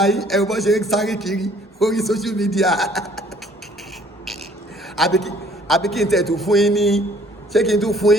yìí ẹ̀rù bọ́ ṣe ń sáré kiri orí social media àbí kí n tẹ̀tù fún yín ní ṣé kí n tún fún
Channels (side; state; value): both; normal; correlation 0.58